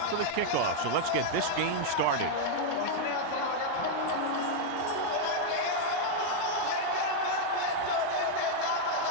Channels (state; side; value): different; both; correlation -0.01